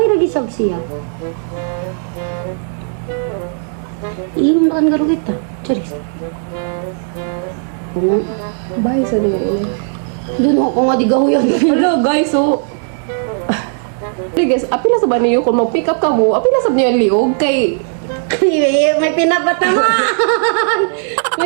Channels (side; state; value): left; silent; 68 dB below the other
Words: lagi sab siya. Inom na kan garo kita. Charis. Kung Bye sa doon. doon ako nga di gahuyan. Hello guys, so... Hey guys, apila sa ba niyo kung mag-pick up ka mo? Apila sa niyo liog kay... May pinapatamaan.